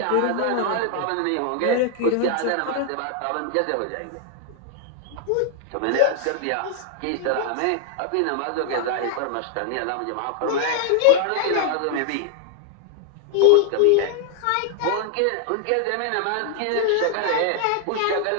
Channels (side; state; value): both; different; correlation 0.00